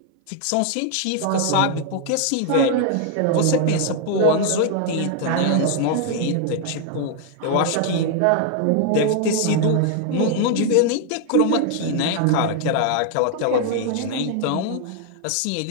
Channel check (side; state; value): both; different; correlation 0.00